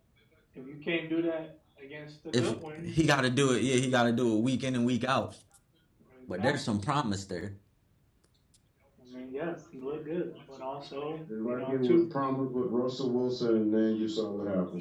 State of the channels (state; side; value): identical; both; correlation 1.00